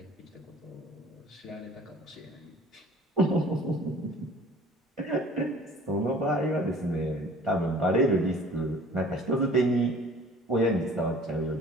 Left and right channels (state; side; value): normal; both; correlation 0.49